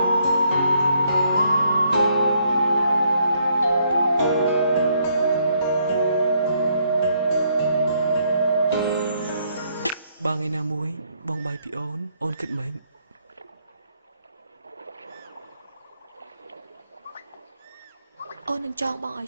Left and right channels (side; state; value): both; inverted; correlation -0.71